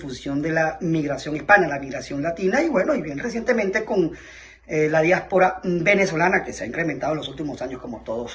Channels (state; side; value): identical; both; correlation 1.00